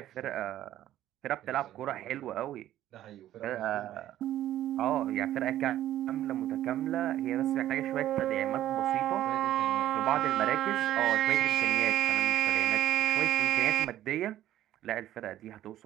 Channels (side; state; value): left; quieter; 13.0 dB